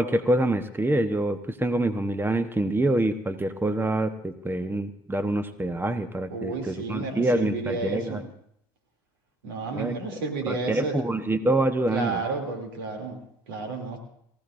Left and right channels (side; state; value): both; normal; correlation 0.71